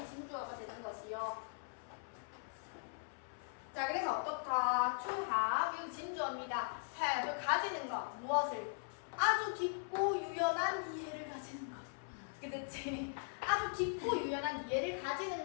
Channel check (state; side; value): silent; right; 51 dB below the other